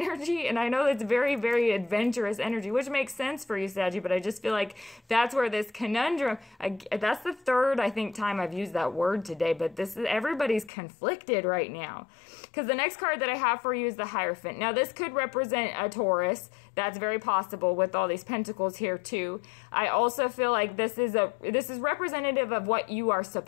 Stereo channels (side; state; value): right; drops out; at 10.7 s